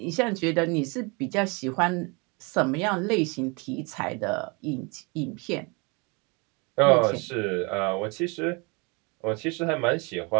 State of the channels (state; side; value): quieter; left; 30.0 dB